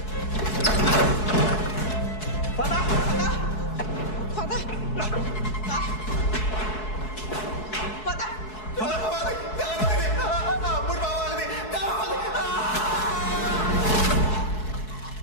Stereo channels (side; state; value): right; late; 4.7 ms